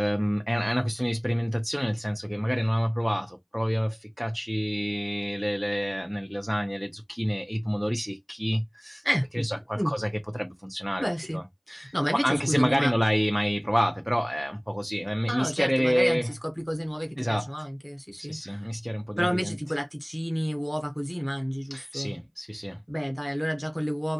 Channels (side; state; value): both; identical; correlation 1.00